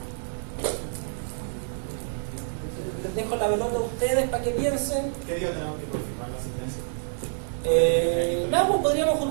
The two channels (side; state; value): left; silent; digital silence